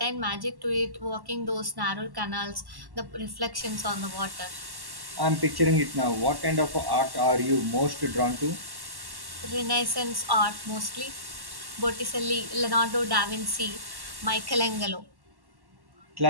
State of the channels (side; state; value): left; late; 1.1 ms